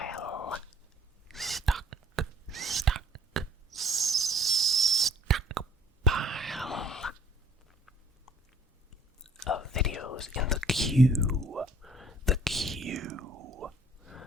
Stockpile of videos in the queue. The queue.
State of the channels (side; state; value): both; normal; correlation 0.57